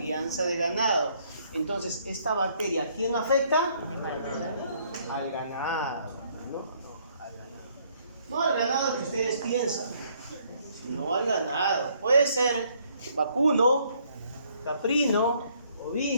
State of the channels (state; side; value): inverted; both; correlation -0.66